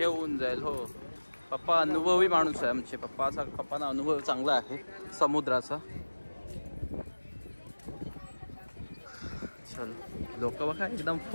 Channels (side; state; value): both; inverted; correlation -1.00